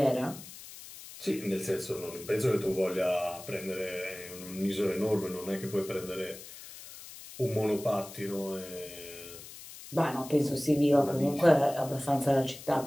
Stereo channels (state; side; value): noise; left; hiss, 15 dB below the sound